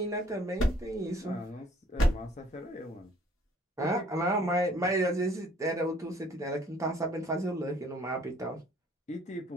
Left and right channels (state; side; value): normal; both; correlation 0.58